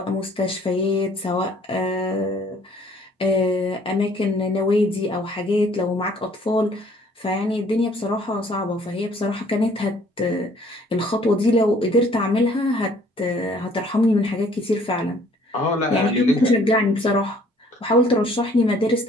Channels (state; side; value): normal; both; correlation 0.59